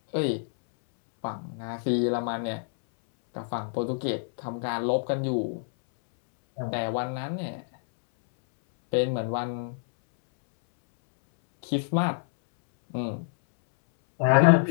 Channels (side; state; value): right; silent; 60 dB below the other